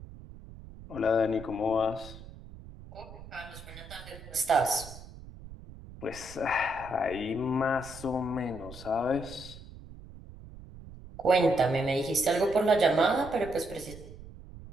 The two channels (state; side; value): noise; right; rumble, 16 dB below the sound